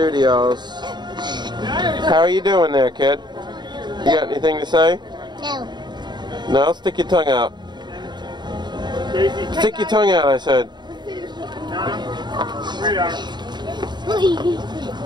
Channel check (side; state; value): left; late; 0.21 ms